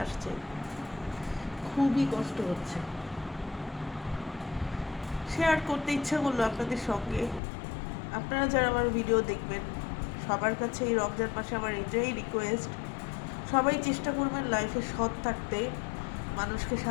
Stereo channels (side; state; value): right; drops out; at 7.4 s